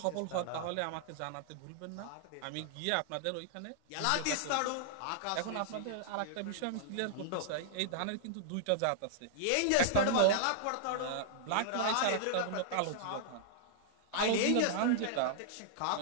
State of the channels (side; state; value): both; different; correlation -0.01